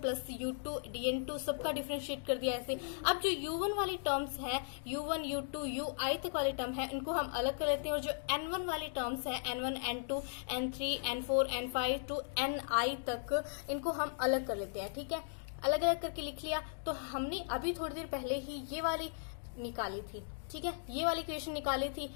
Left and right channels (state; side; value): silent; right; digital silence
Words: plus U2 DN2 सबका डिफरेंशिएट कर दिया ऐसे। अब जो U1 वाली टर्म्स है U1 U2 UI तक वाली टर्म है इनको हम अलग कर लेते हैं, और जो N1 वाली टर्म्स है N1 N2 N3 N4 N5 to Ni तक इनको हम अलग कर लेते हैं। ठीक है, अलग अलग करके लिख लिया। तो हमने अभी थोड़ी देर पहले ही ये वाली निकाली थी। ठीक है, ये वाली इक्वेशन निकाली थी।